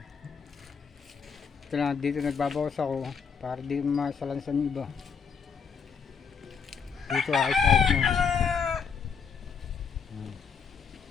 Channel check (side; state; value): right; quieter; 6.2 dB